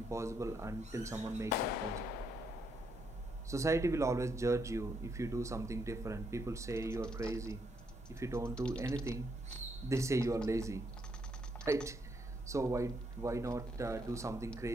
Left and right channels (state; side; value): normal; both; correlation 0.76